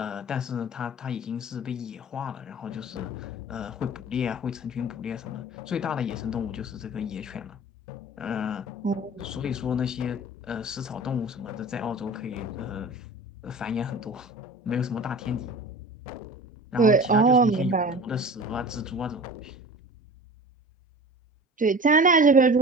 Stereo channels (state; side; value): normal; both; correlation 0.38